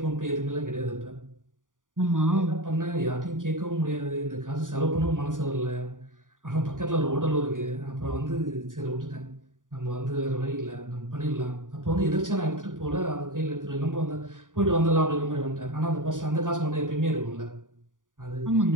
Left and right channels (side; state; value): left; late; 0.88 ms